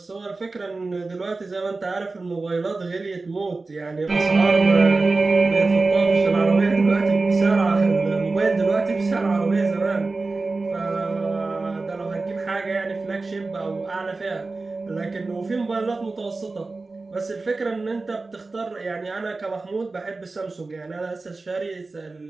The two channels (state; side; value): quieter; left; 3.6 dB